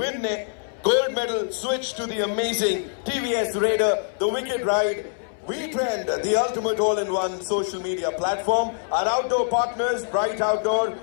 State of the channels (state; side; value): silent; right; 62 dB below the other